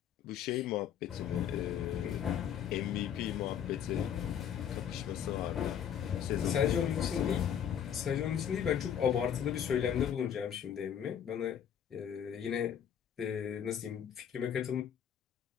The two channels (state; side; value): quieter; right; 8.9 dB